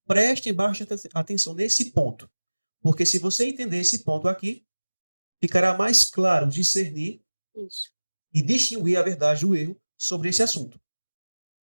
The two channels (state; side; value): inverted; both; correlation -1.00